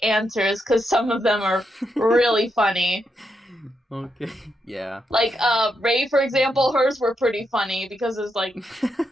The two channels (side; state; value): both; normal; correlation 0.82